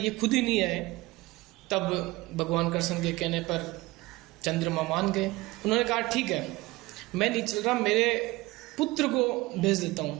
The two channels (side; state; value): left; quieter; 20.6 dB